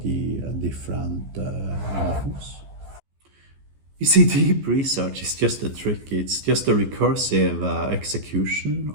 the different models. You see, deep research is just a trick. It's just a recursive execution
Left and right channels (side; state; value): left; late; 14 ms